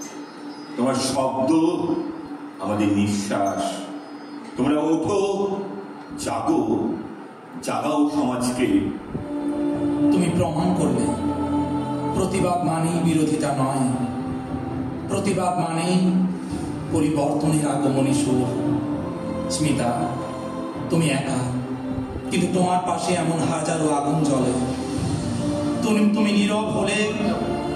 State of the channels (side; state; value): both; identical; correlation 1.00